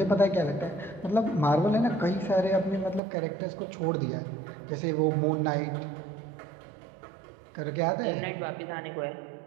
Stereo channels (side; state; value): left; drops out; at 3.0 s